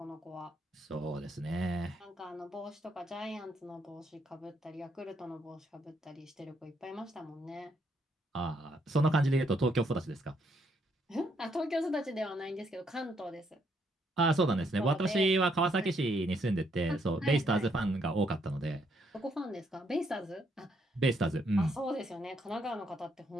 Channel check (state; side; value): normal; both; correlation 0.73